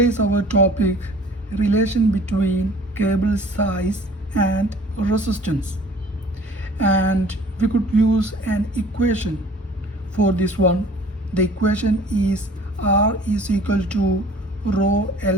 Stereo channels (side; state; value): both; normal; correlation 0.50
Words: our topic relation between cable size and resistance. And we could use an equation for this one. The equation is R is equal to rho